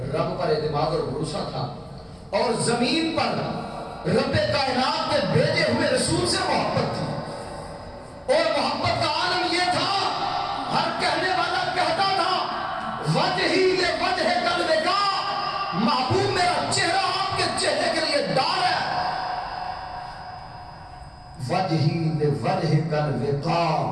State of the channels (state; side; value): identical; both; correlation 1.00